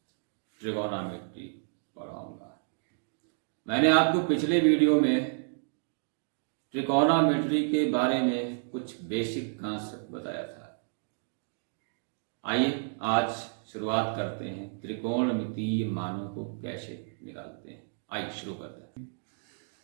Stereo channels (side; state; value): left; silent; digital silence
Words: ट्रिगोनोमेट्री पढ़ाऊंगा। मैंने आपको पिछले वीडियो में ट्रिगोनोमेट्री के बारे में कुछ बेसिक कॉन्सेप्ट बताया था। आइए आज शुरुआत करते हैं, त्रिकोणमितीय मानों को कैसे निकालते हैं। आइए शुरू करते हैं।